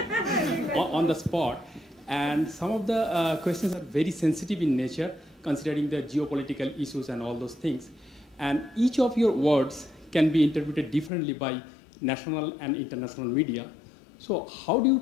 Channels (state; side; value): drops out; right; at 11.1 s